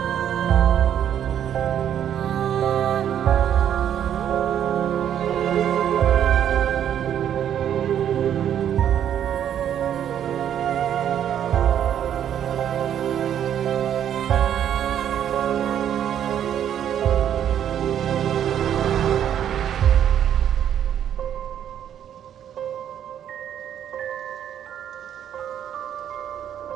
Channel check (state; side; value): quieter; left; 9.8 dB